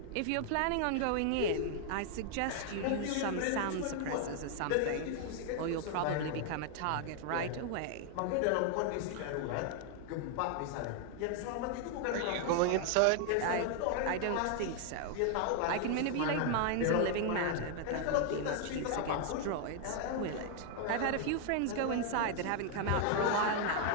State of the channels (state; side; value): different; both; correlation 0.00